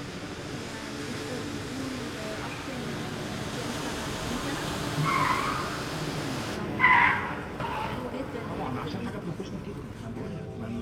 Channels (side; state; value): both; identical; correlation 1.00